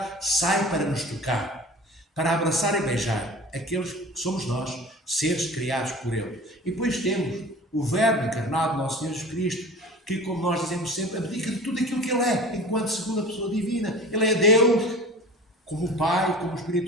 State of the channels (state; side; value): normal; both; correlation 0.39